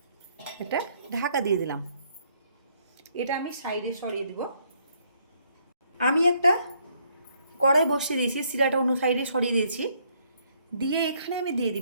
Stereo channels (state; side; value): inverted; both; correlation -0.69